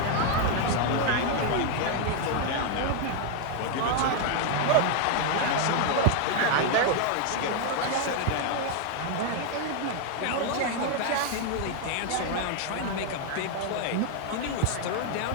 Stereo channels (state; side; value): different; both; correlation 0.00